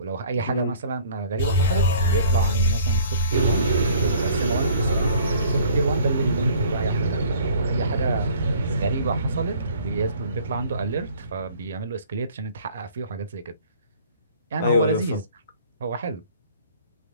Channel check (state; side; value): inverted; both; correlation -0.53